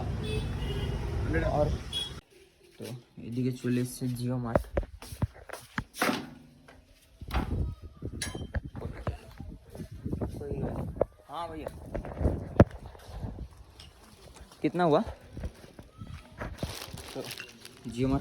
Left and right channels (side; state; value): both; identical; correlation 1.00